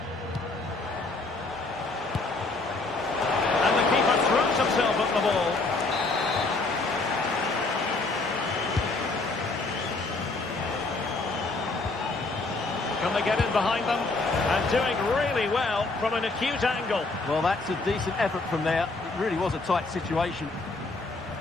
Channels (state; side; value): quieter; right; 3.4 dB